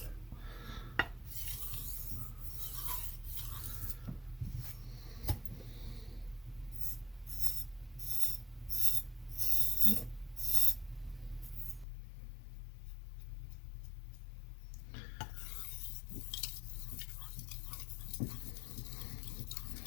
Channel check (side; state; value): right; drops out; at 11.9 s